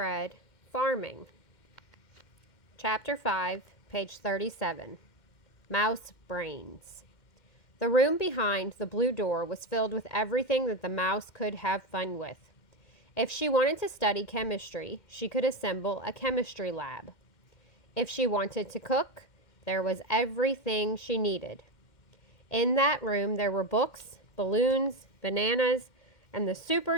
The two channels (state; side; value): late; right; 2.1 ms